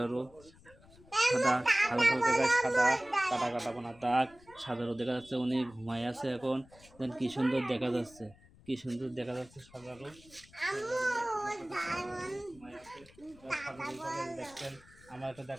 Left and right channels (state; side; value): noise; left; rumble, 25 dB below the sound